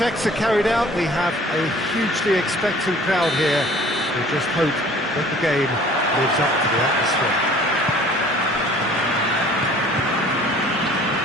are carried out. We have a hugely expectant crowd here. We just hope that the game lives up to the atmosphere.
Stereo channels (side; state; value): both; normal; correlation 0.51